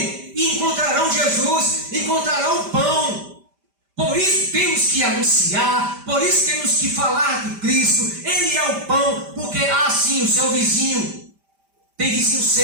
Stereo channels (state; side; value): late; left; 5.1 ms